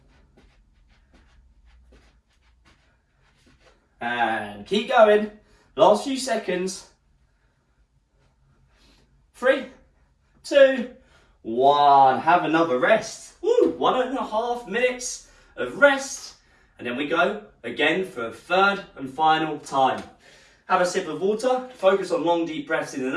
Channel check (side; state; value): both; identical; correlation 1.00